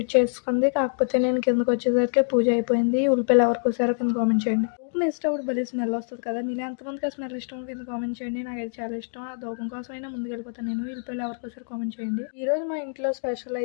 చేసుకుంది. కాకపోతే నేను కిందకొచ్చేసరికి పూజ అయిపోయింది. ఉల్లిపాయలు ఎవరికోసారో కింద కామెంట్ చేయండి. ధూపం వేసేటప్పుడు భలే స్మెల్ వస్తది కదా! మీలో ఎంతమందికి ఆ స్మెల్ ఇష్టమో కింద కామెంట్ చేయండి. నాకైతే చాలా ఇష్టం. ఆ ధూపం కోసమైనా ముందుకెళ్ళిపోతాను నేను. ఉల్లిపాయలు ఎవరికోసారో కామెంట్ చేయండి. ఈరోజు మా ఇంట్లో స్పెషల్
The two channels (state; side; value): silent; right; digital silence